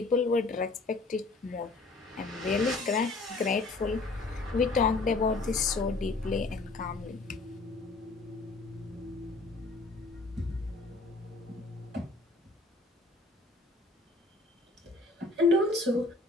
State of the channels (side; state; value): right; quieter; 3.3 dB